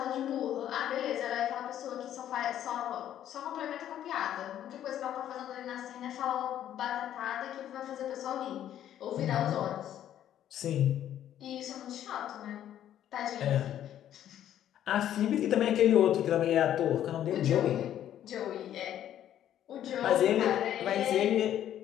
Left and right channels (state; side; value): quieter; right; 11.1 dB